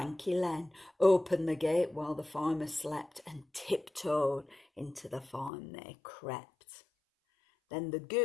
Len, opened the gate while the farmer slept, and tiptoed into the farm they crept. Then the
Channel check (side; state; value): right; drops out; at 5.5 s